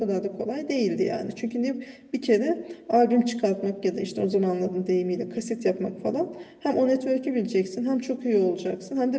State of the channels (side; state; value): both; identical; correlation 1.00